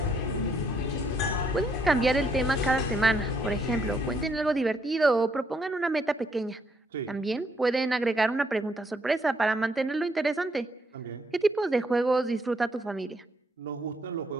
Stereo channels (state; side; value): normal; both; correlation 0.72